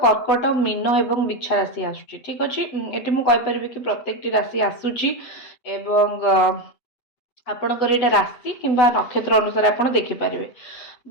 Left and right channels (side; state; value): right; late; 8.0 ms